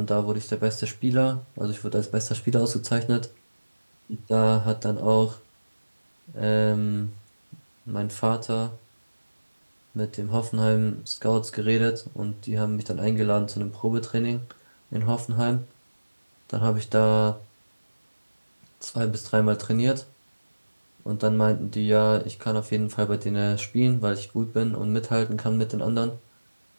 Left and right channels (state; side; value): inverted; both; correlation -1.00